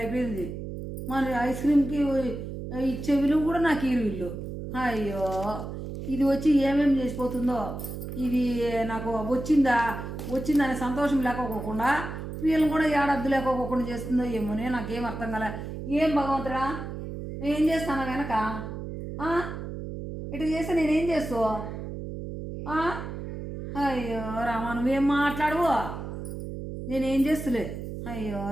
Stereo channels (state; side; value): noise; right; hum, 7 dB below the sound